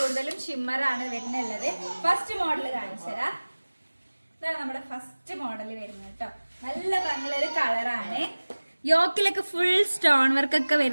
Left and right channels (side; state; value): both; inverted; correlation -1.00